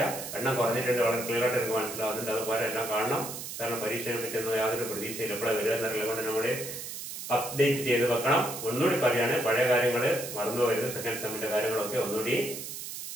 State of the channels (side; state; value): right; noise; hiss, 8 dB below the sound